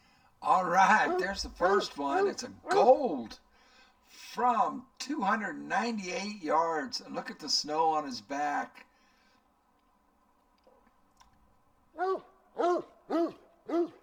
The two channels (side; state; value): both; identical; correlation 1.00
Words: All right, there's the first one. It's a gold from 298 yards. And look at the snow on his back.